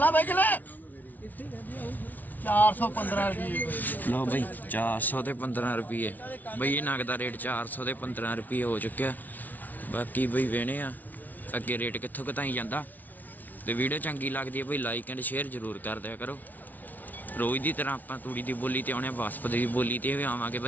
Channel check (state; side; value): late; right; 0.079 ms